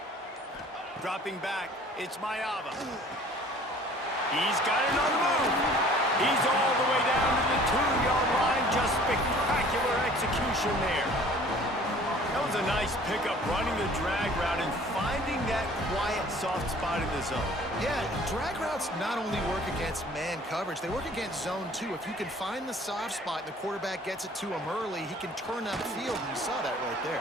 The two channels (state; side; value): normal; both; correlation 0.51